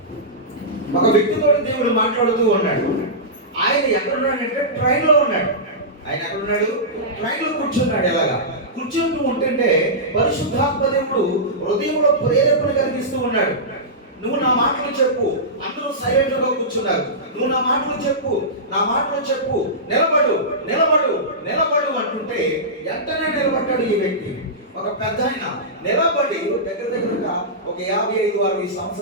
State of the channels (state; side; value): normal; both; correlation -0.16